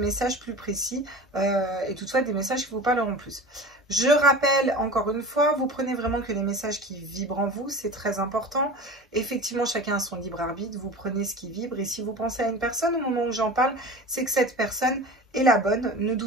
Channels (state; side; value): normal; both; correlation 0.35